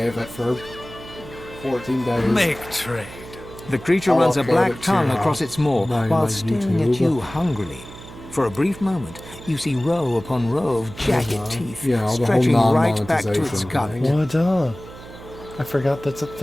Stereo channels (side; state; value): right; noise; hum, 16 dB below the sound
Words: it for 14 days. Make trade. The creature runs a black tongue across its maw while staring at you hungrily. For a brief moment, you see row upon row of jagged teeth stretching right back to its gut. What I forgot that's a